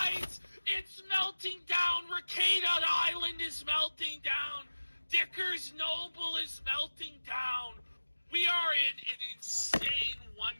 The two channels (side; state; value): both; inverted; correlation -1.00